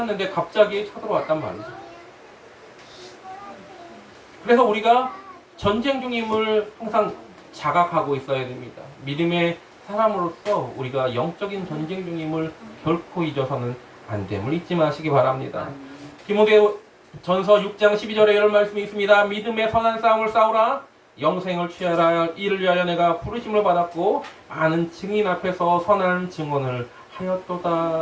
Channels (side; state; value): both; identical; correlation 1.00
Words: 갑자기 쳐들어왔단 말이죠. 그래서 우리가 전쟁 중임을 항상 자각하고 있어야 됩니다. 믿음의 사람으로서 우리가 영적인 전쟁 중임을 결코 잊어서는 안 됨을 잊지 마시기 바랍니다. 디모데 전서 6장 12절에 이런 말씀이 있습니다. 믿음의 선한 싸움을 싸우라. 영생을 취하라. 이를 위하여 내가 부르심을 받았고 많은 증인 앞에서 선한 증언을